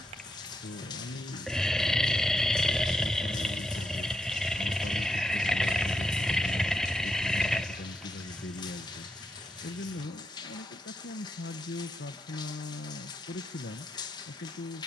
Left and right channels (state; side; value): normal; both; correlation 0.83